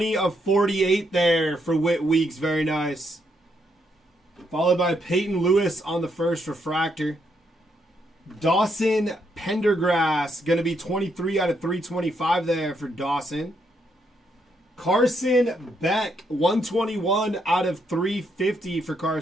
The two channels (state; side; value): normal; both; correlation 0.77